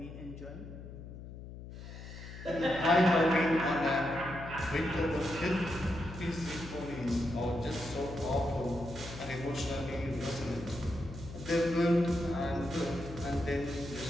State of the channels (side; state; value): left; noise; hum, 12 dB below the sound